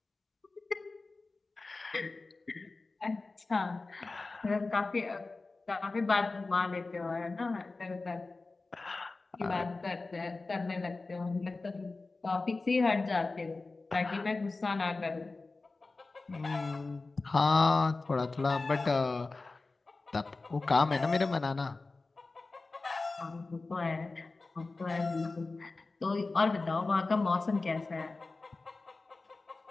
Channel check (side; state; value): right; quieter; 3.6 dB